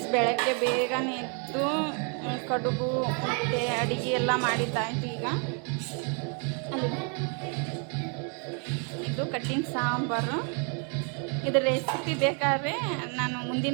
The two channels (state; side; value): quieter; left; 38.6 dB